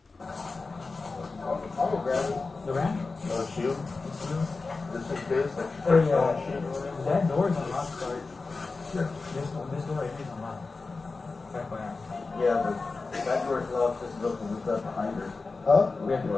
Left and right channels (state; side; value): quieter; right; 3.9 dB